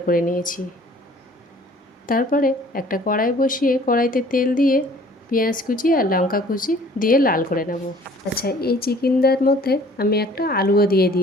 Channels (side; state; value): both; normal; correlation 0.53